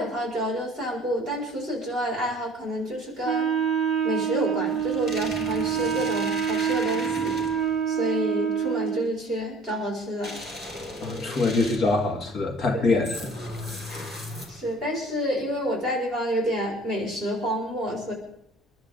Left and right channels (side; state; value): both; normal; correlation 0.48